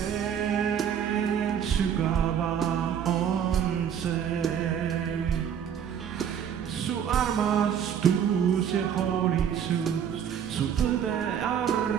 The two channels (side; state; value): left; quieter; 8.6 dB